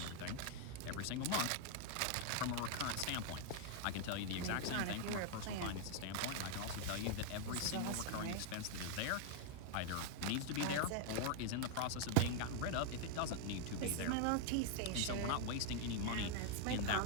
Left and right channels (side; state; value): both; different; correlation 0.00